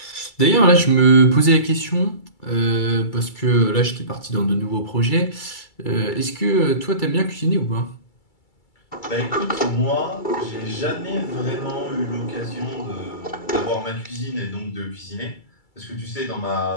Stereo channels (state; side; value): late; right; 2.3 ms